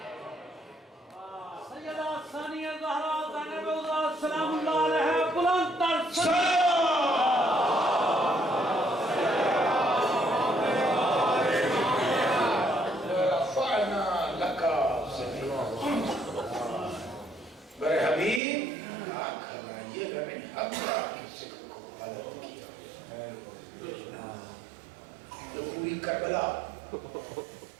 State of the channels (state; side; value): drops out; left; at 18.4 s